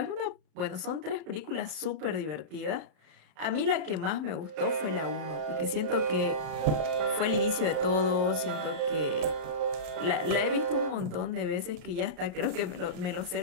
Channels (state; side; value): late; left; 33 ms